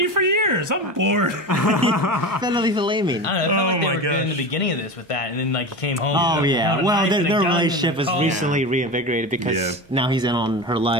for years. I'm bored." Finally flaming. I don't know. I felt like they were good in the beginning of this with that, and then like he came home. Oh yeah. Well, their relationship was recently reinvigorated because now he's in on her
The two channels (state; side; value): normal; both; correlation 0.26